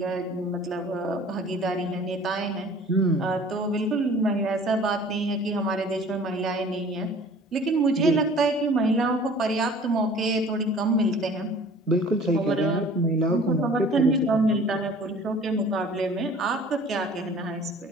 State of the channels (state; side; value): normal; both; correlation 0.49